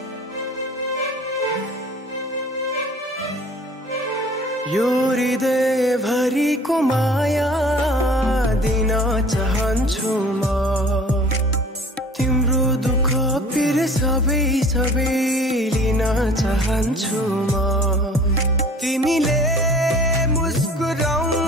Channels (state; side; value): normal; both; correlation 0.48